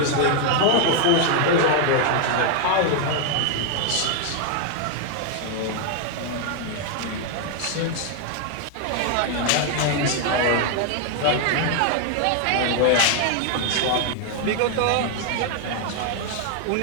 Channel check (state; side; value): different; both; correlation 0.00